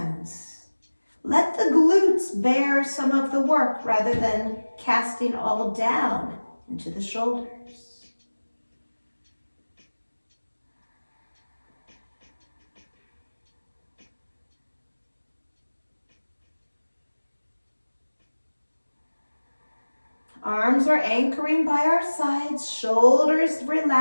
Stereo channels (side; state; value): both; inverted; correlation -1.00